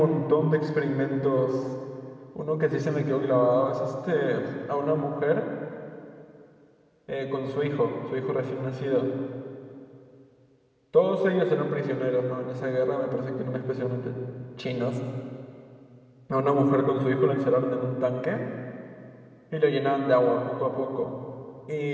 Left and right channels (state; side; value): identical; both; correlation 1.00